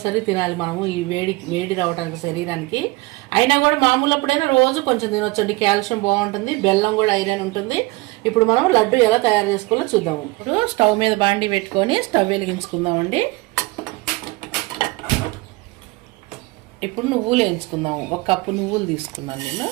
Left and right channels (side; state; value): left; quieter; 22.6 dB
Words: తినాలి మనము, ఈ వేడి రావడానికి శరీరానికి. అయినా కూడా మామూలు అప్పుడైనా రోజు కొంచెం తినొచ్చండి, కాల్షియం బాగుంటుంది. బెల్లం కూడా ఐరన్ ఉంటుంది. ఇప్పుడు మనం లడ్డు ఎలా తయారు చేసుకోవాలో చూద్దాము. ఇప్పుడు స్టవ్ మీద బాండి పెట్టుకొని స్టవ్ వెలిగించుకుందామండి. ఇప్పుడు నువ్వులు వేయించుకుందాము. ఒక కప్పు నువ్వులు తీసుకున్నాను నేను,